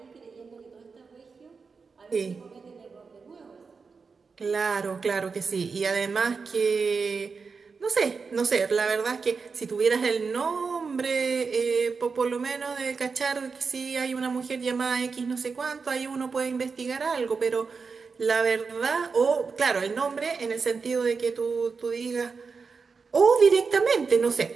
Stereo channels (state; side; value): quieter; left; 5.0 dB